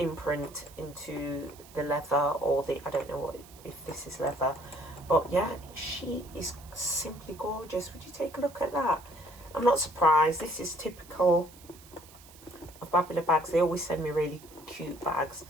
into the leather, or the, I don't know what, if this is leather, but yeah, she is simply gorgeous. Would you take a look at that? I'm not surprised. This is typical of Babalabags. They always send me really cute bags,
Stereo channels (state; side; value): noise; right; hiss, 22 dB below the sound